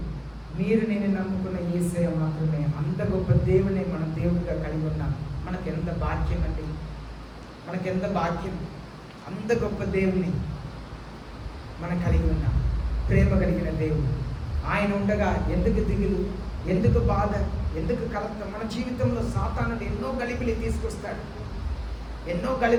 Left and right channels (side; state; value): both; identical; correlation 1.00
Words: మీరు, నేను నమ్ముకున్న యేసయ్య మాత్రమే. అంత గొప్ప దేవుని మనం దేవుడిగా కలిగి ఉన్నాం. మనకెంత భాగ్యం అండి, మనకెంత భాగ్యం. అంత గొప్ప దేవుని మనం కలిగి ఉన్నాం. ప్రేమ కలిగిన దేవుడు. ఆయన ఉండగా ఎందుకు దిగులు, ఎందుకు బాధ, ఎందుకు కలత? మన జీవితంలో సాతానుడు ఎన్నో గలిబిలి తీసుకొస్తాడు.